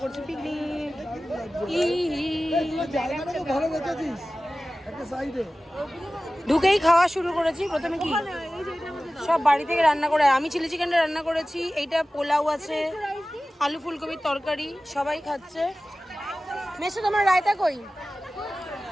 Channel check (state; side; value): normal; both; correlation 0.96